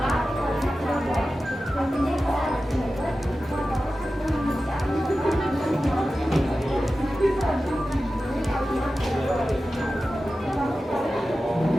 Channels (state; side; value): normal; both; correlation 0.94